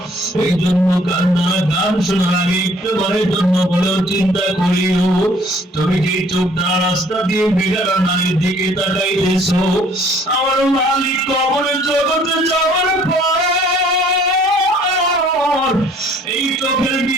এই জন্য গান শোনার আগে একবারের জন্য বলেও চিন্তা করিও, তুমি যে চোখ দ্বারা রাস্তা দিয়ে বেগারা নারীর দিকে তাকাইতেছো, আমার মালিক কবরের জগতে যাওয়ার পর এই চোখের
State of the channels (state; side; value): normal; both; correlation 0.58